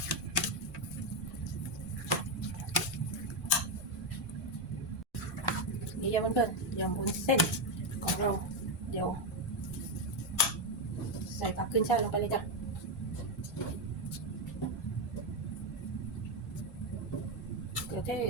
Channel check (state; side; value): normal; both; correlation 0.06